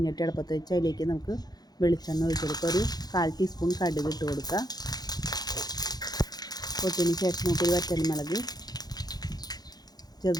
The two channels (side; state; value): right; late; 0.19 ms